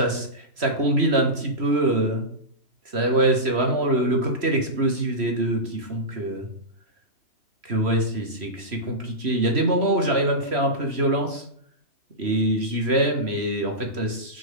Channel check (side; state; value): left; late; 3.1 ms